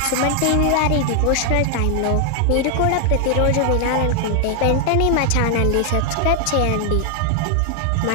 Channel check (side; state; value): both; different; correlation 0.00